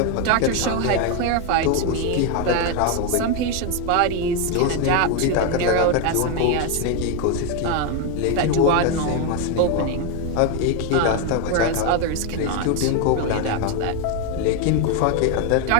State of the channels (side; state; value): both; different; correlation 0.01